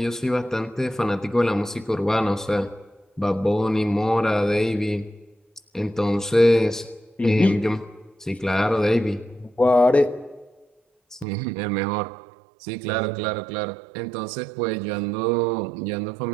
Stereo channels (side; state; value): left; drops out; at 11.2 s